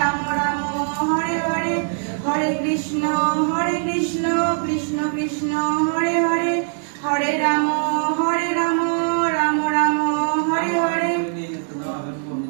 রাম হরে হরে, হরে কৃষ্ণ কৃষ্ণ কৃষ্ণ হরে হরে, হরে রাম রাম রাম হরে হরে।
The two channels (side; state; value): left; silent; digital silence